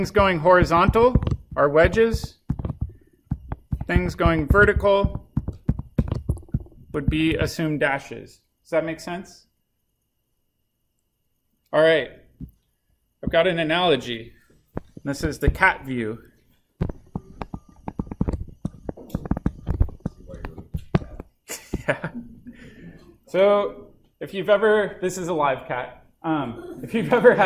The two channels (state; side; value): identical; both; correlation 1.00